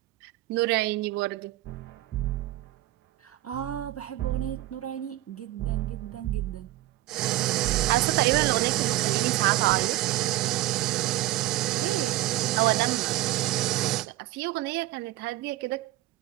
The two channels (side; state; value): left; quieter; 16.5 dB